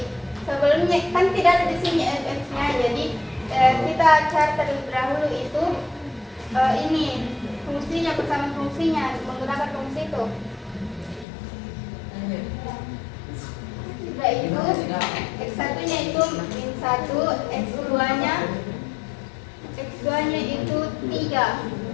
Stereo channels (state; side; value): drops out; right; at 11.2 s